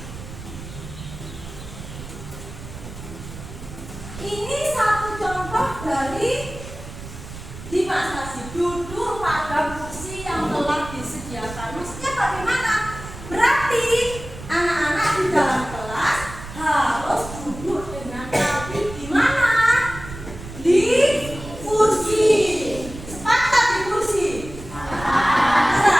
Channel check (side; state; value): right; noise; rumble, 13 dB below the sound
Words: Ini satu contoh dari dimaksasi duduk pada kursi yang telah disediakan. Maksudnya bagaimana? Berarti anak-anak di dalam kelas harus duduk dengan rapi di mana? Di kursi. Sepakat di kursi.